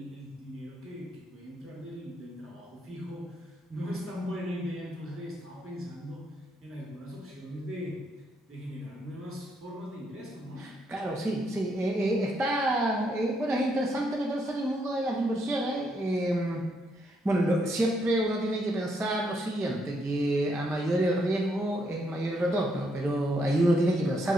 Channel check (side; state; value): both; normal; correlation 0.76